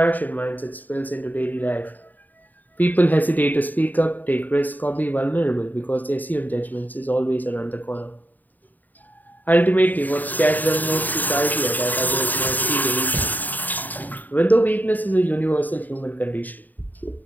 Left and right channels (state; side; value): late; right; 0.085 ms